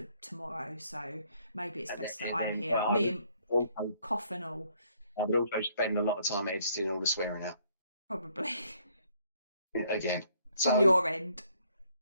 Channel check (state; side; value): inverted; both; correlation -0.66